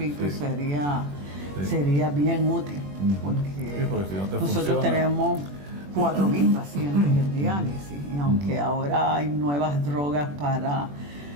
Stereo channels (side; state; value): left; late; 21 ms